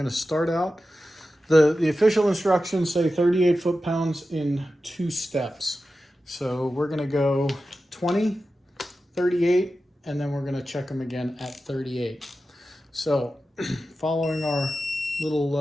to start out The official instructions say 38 foot-pounds in 2 steps. So we're gonna go 20, 38, and then we're gonna check them again at 38. So following our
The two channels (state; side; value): normal; both; correlation 0.93